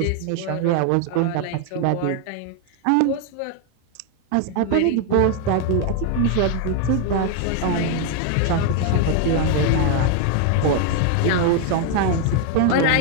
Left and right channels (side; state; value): both; different; correlation 0.01